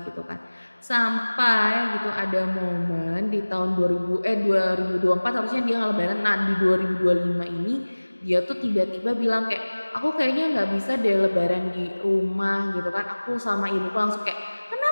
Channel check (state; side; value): inverted; both; correlation -1.00